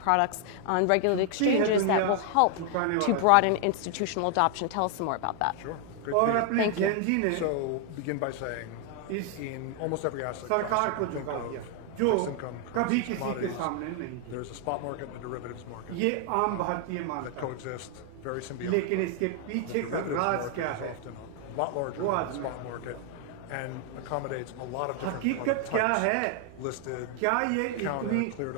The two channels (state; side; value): different; both; correlation 0.00